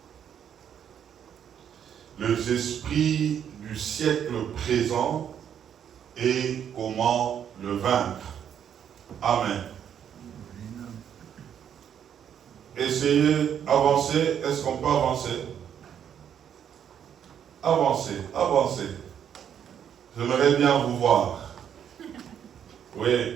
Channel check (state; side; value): quieter; left; 8.9 dB